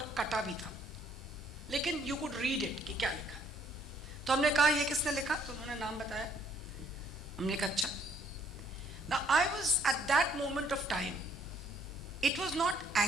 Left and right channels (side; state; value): both; normal; correlation 0.65